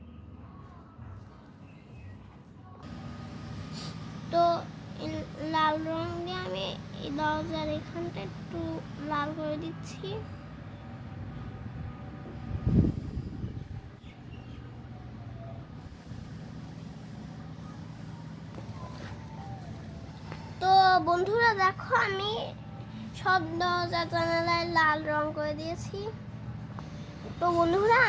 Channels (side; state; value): both; identical; correlation 1.00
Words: তো লাল রং দিয়ে আমি এই দরজার এখানটা একটু লাল করে দিচ্ছি। তো বন্ধুরা দেখো, আমি সব দরজা জানালায় লাল রং করে দিয়েছি। তো বন্ধুরা